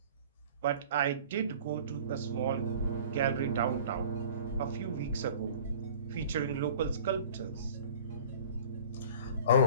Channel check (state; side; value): inverted; both; correlation -0.44